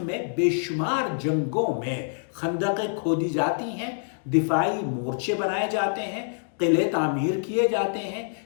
بے شمار جنگوں میں خندقیں کھودی جاتی ہیں، دفاعی مورچے بنائے جاتے ہیں، قلعے تعمیر کیے جاتے ہیں۔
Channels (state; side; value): silent; right; digital silence